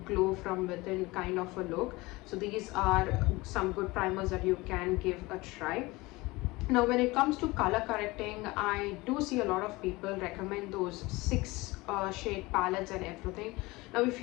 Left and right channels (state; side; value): quieter; right; 22.0 dB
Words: glow from within kind of a look. So these are some good primers that you can give a try. Now when it comes to color correcting, I do see a lot of people recommend those 6 shade palettes and everything. Now if